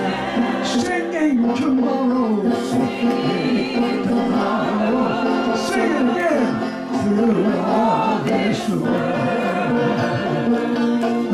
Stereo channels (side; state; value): both; identical; correlation 1.00